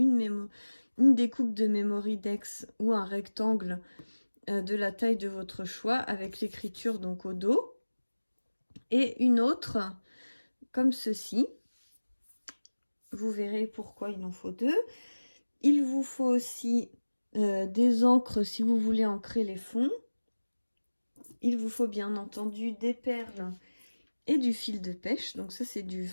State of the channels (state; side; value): inverted; both; correlation -1.00